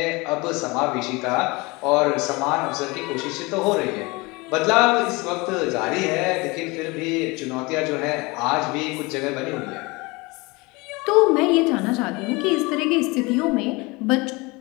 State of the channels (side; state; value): right; quieter; 24.9 dB